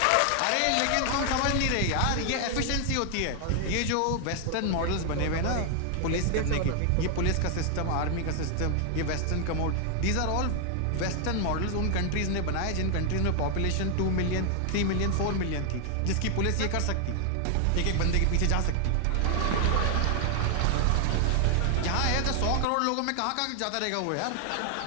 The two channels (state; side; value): different; both; correlation 0.00